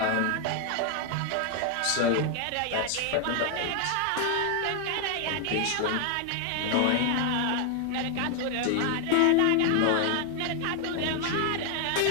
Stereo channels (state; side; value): different; both; correlation 0.00